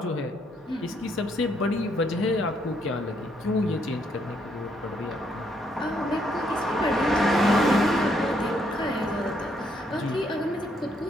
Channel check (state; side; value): normal; both; correlation 0.72